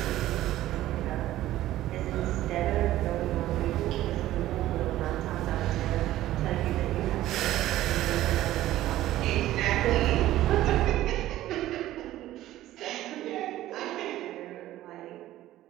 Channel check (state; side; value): quieter; left; 14.6 dB